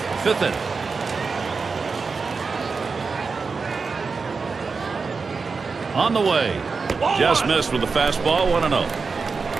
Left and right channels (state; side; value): quieter; left; 4.7 dB